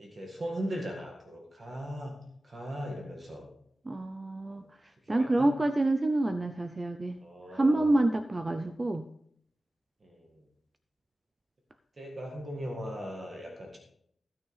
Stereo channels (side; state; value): both; normal; correlation 0.96